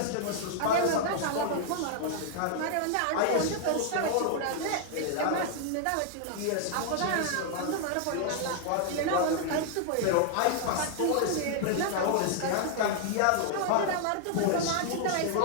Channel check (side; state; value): both; different; correlation 0.00